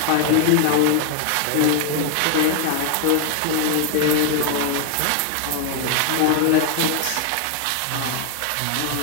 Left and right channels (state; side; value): different; both; correlation 0.00